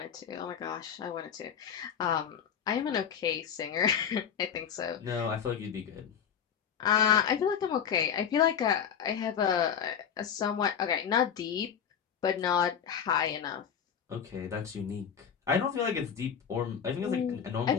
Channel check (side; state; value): right; quieter; 7.9 dB